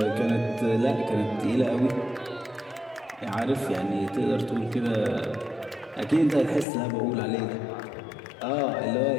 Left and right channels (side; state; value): right; drops out; at 6.7 s